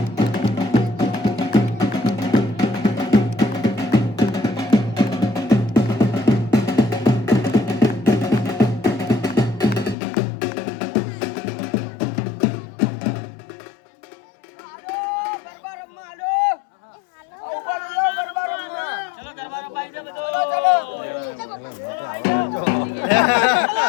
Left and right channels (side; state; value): right; drops out; at 10.0 s